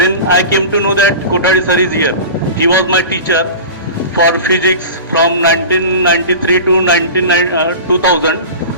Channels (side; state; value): both; inverted; correlation -0.34